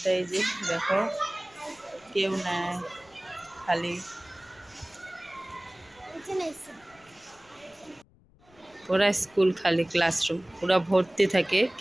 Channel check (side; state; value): left; noise; rumble, 29 dB below the sound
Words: এই যে দেখো কেউ নাই, খালি। পুরা স্কুল খালি, ক্লাসরুম পুরা ভর্তি থাকে,